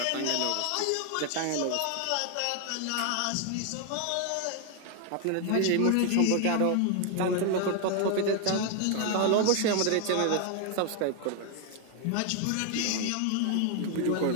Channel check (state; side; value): different; both; correlation 0.00